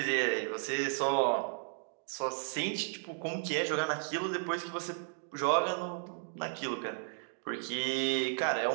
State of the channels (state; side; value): silent; left; 55 dB below the other